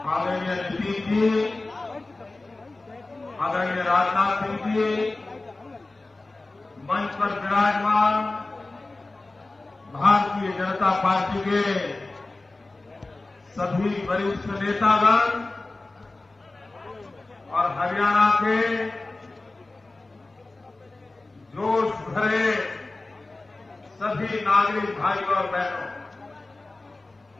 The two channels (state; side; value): quieter; right; 3.1 dB